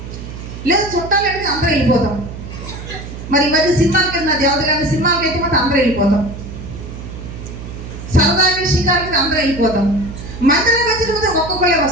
లేదా చుట్టాలు అయితే అందరూ వెళ్ళిపోతాం. మరి ఈ మధ్య సినిమాలకి వెళ్ళిన దేవతగారి సినిమాలకి అయితే మాత్రం అందరూ వెళ్ళిపోతాం. సరదాగా షికారులకి అందరూ వెళ్ళిపోతాం. మందిరానికి వచ్చిన ఒక్కొక్కరే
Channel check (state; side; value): noise; right; hum, 11 dB below the sound